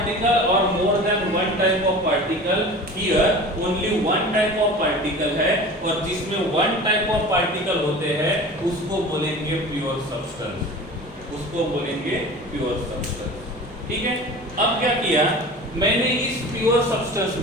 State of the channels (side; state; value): both; normal; correlation 0.37